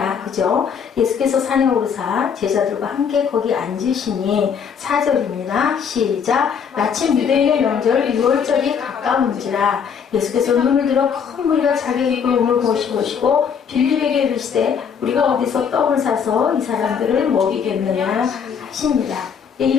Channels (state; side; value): quieter; right; 7.0 dB